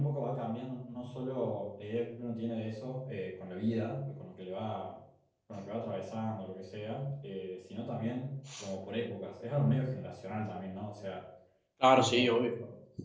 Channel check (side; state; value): both; identical; correlation 1.00